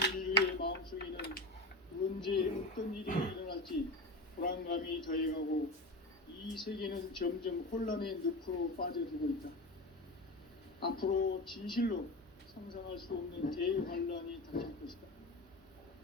인류의 마음속에는 언제 어떤 일이 일어날지 불안감이 더해가고 이 세계는 점점 혼란의 늪으로 빠져들고 있다. 앞으로 진실로 상상할 수 없는 대환란이 닥칠 것이다.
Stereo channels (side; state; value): both; normal; correlation 0.25